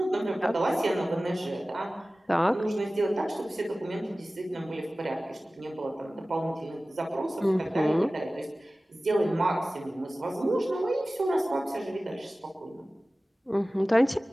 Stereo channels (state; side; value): normal; both; correlation 0.97